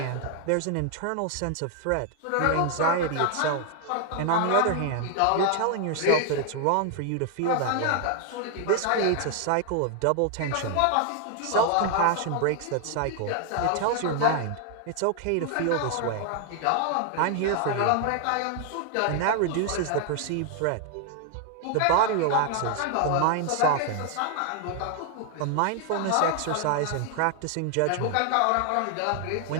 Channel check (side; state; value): both; different; correlation 0.00